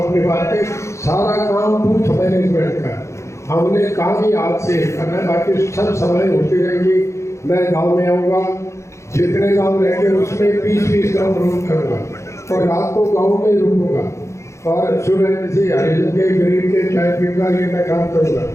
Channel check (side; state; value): right; late; 0.14 ms